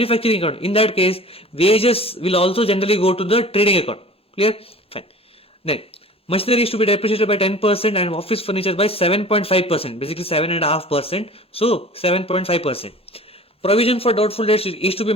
account, in that case, wages will also generally go to the trading account. Clear? Fine. Then machinery is to be depreciated by 10% and office furniture by 7.5%, basically 7.5%. So 7.5%. Provision for doubtful debts is to be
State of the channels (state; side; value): normal; both; correlation 0.43